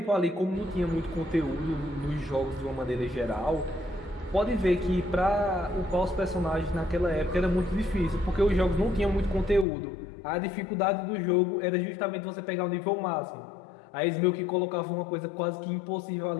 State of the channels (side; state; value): right; drops out; at 9.7 s